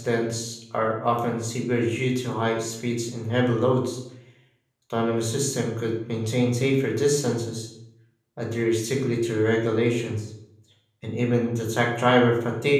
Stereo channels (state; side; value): identical; both; correlation 1.00